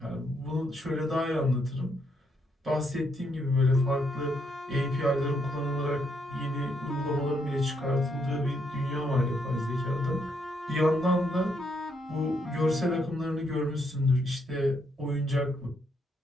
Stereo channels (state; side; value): normal; both; correlation 0.75